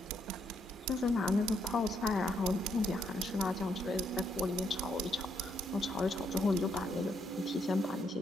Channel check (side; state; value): both; normal; correlation 0.74